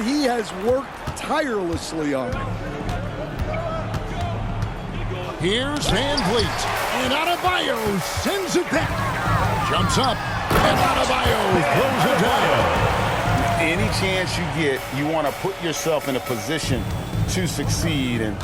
he has worked tirelessly on. Here's VanVleet. And Adebayo sends it back. Jumps up. And Adebayo throws it down. Any chance you get, you want to put yourself in a position to succeed, and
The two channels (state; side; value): identical; both; correlation 1.00